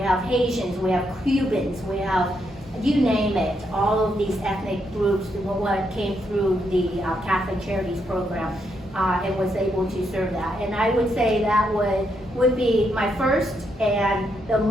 Haitians, we have Cubans, we have, you name it, all of these ethnic groups what came through the Catholic Charities program, and was able to serve that. And I would say that would be my first and the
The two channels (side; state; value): both; normal; correlation 0.79